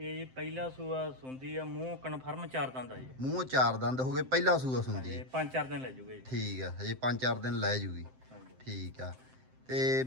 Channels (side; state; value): left; late; 7.7 ms